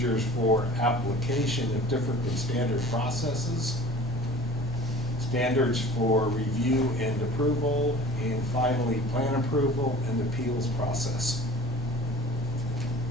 for application of different than standard processes, standards for review and approval, and finally, plan approval and appeals process.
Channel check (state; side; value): normal; both; correlation 0.44